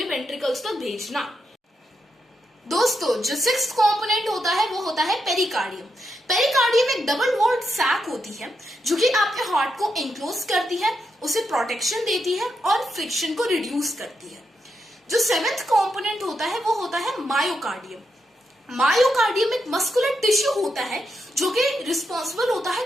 वेंट्रिकल्स तक भेजना। दोस्तों, जो 6th कंपोनेंट होता है वो होता है पेरिकार्डियम। पेरिकार्डियम एक डबल वॉल्ड सैक होती है जो कि आपके हार्ट को एनक्लोज करती है, उसे प्रोटेक्शन देती है और फ्रिक्शन को रिड्यूस करती है। जो 7th कंपोनेंट होता है वो होता है मायोकार्डियम। मायोकार्डियम एक मस्कुलर टिश्यू होता है जो कि रिस्पॉन्सिबल होता है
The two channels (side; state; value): both; normal; correlation 0.83